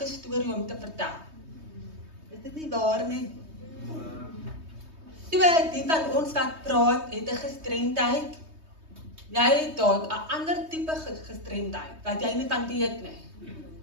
'n storie om te vertel. Is dit nie waar nie? So, die van ons wat praat, het 'n gestremdheid. Jy het dalk 'n ander tipe gestremdheid, wat jy nie van weet nie.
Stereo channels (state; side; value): late; left; 3.2 ms